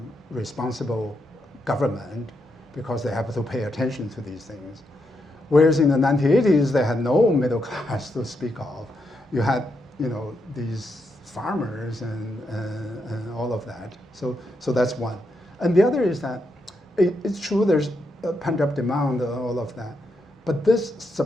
responsible government because they have to pay attention to these things. Whereas in the 1980s, they had no middle class to speak of. You had, these farmers and all of that. So that's one. And the other is that it's true there's a pent-up demand and all of that, but this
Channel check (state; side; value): normal; both; correlation 0.82